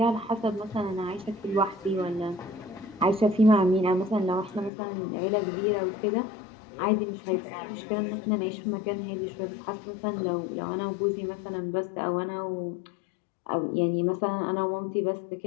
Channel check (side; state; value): right; drops out; at 4.7 s